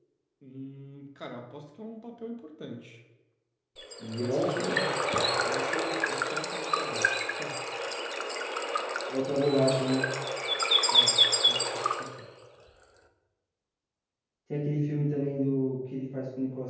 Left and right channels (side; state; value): both; identical; correlation 1.00